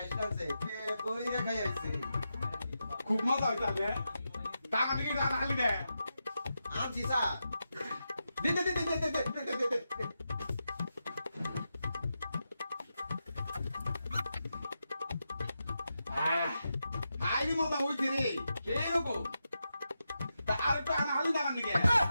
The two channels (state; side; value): inverted; both; correlation -0.88